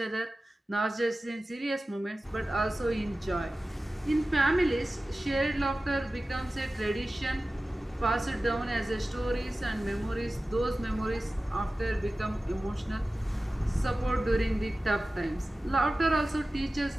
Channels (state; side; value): normal; both; correlation 0.96